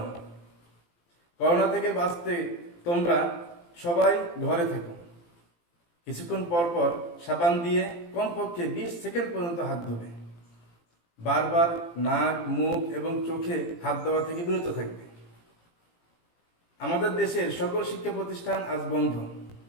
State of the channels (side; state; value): right; late; 18 ms